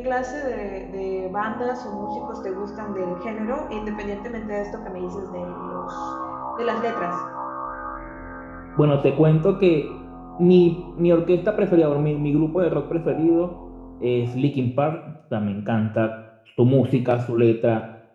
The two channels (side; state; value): both; identical; correlation 1.00